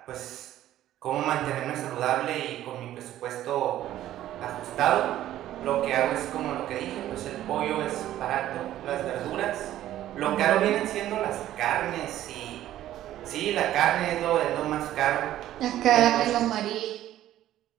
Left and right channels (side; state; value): left; quieter; 13.1 dB